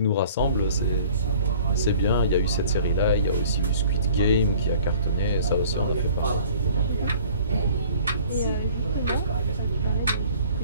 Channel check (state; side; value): inverted; both; correlation -0.51